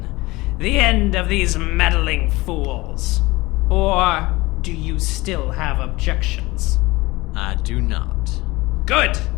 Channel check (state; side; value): quieter; right; 21.2 dB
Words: The end of these meddling fools. Or do you still have objections? I do not. Good.